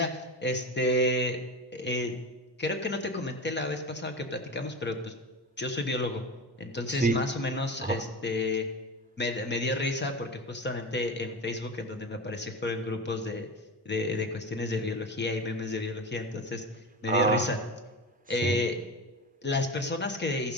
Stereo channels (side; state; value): both; normal; correlation 0.26